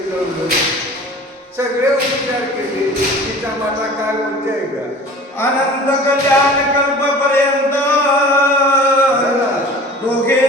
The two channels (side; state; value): both; normal; correlation 0.42